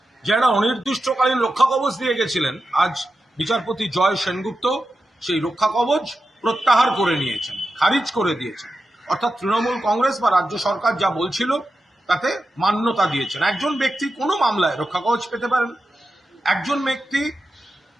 যে একটা অনির্দিষ্টকালীন রক্ষা কবচ দিয়ে গেছিলেন, আজ বিচারপতি জয় সেনগুপ্ত সেই রক্ষা কবচ প্রত্যাহার করে নিয়েছেন, খারিজ করে দিয়েছেন। অর্থাৎ তৃণমূল কংগ্রেস বা রাজ্য সরকার যা বলছিল তাতে মান্যতা দিয়েছেন। একজন ব্যক্তি কোনো মামলায় রক্ষা কবচ পেতে পারেন, একজন ব্যক্তি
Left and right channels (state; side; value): normal; both; correlation 0.91